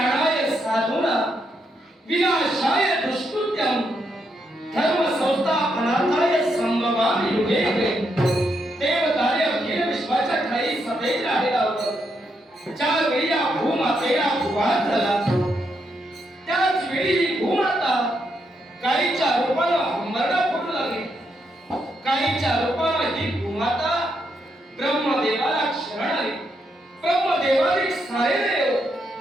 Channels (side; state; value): both; normal; correlation 0.80